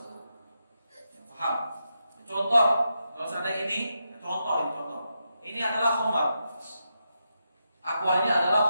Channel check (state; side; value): inverted; both; correlation -0.85